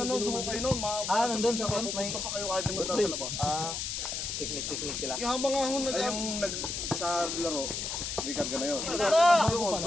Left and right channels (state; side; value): noise; left; hiss, 3 dB below the sound